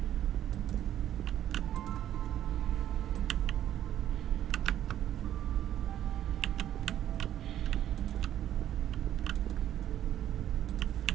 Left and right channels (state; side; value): quieter; left; 11.4 dB